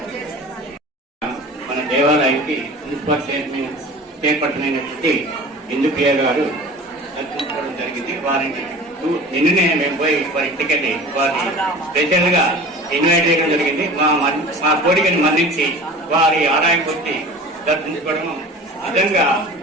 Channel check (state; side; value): normal; both; correlation 0.39